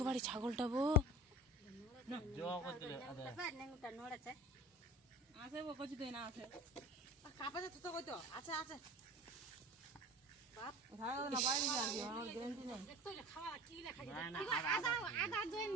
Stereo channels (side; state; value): both; normal; correlation 0.37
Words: ছাগলটা বউ আছে ও কইছি তুই না আছে কাপে তো কই তো আছে আছে বাপ ধারা না বাইরে যাবি আমার গ্যারান্টি নাই দেখতো খাওয়া কি লেখা আছে আদা জয়েন